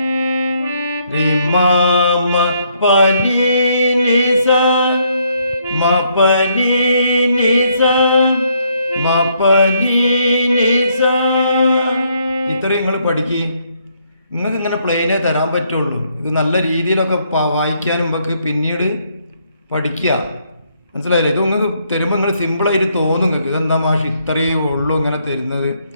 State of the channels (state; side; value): inverted; both; correlation -0.71